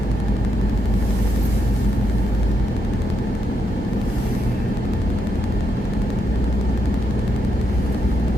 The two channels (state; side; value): normal; both; correlation 0.81